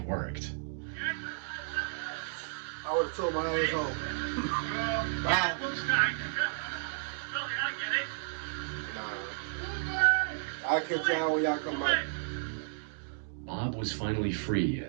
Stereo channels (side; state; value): left; silent; digital silence